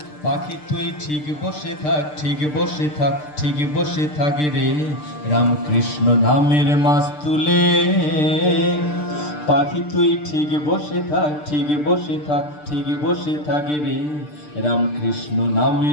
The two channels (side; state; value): right; late; 6.7 ms